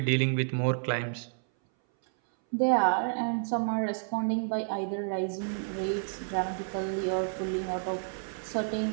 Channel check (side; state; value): left; silent; 58 dB below the other